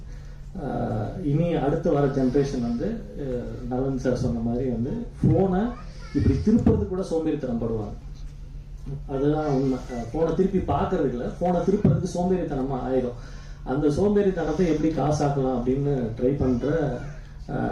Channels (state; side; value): identical; both; correlation 1.00